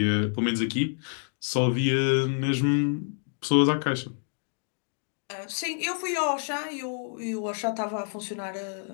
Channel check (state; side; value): silent; right; 59 dB below the other